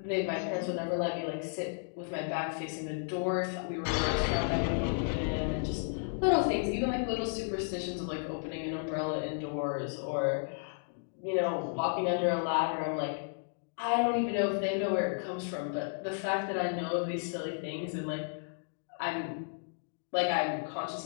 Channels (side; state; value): right; silent; digital silence